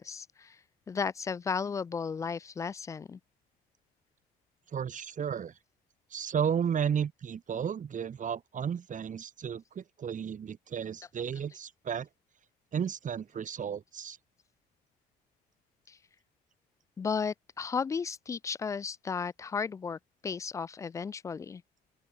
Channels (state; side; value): normal; both; correlation 0.49